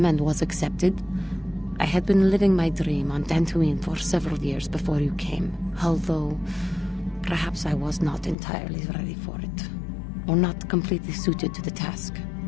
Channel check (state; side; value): drops out; right; at 8.3 s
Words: and was accepted. I had been living my dream on Dantooine for several years before you came, although perhaps I was not entirely ready for it, or not completely suited to the task.